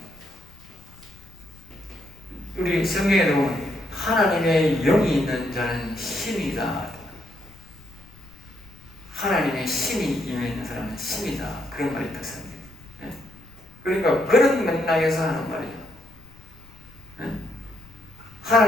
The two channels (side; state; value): left; noise; rumble, 23 dB below the sound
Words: 우리 성경에 보면 하나님의 영이 있는 자는 신이다. 하나님의 신이 임해 사람은 신이다. 그런 말이 있다. 성경에. 그러니까 그런 맥락에서 하는 말이죠.